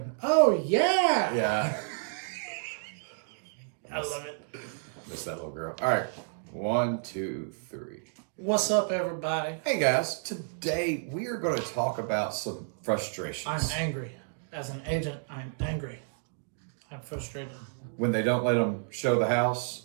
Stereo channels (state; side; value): silent; left; digital silence